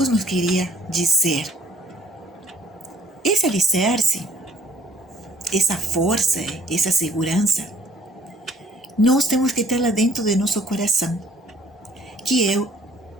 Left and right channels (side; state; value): both; normal; correlation 0.59